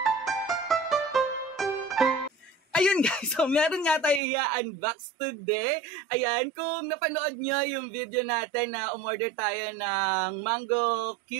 Ayun guys, so meron nga tayo i-unbox today. Ayan, kung napanood nyo yung video natin na umorder tayo ng mango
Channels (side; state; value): left; drops out; at 4.2 s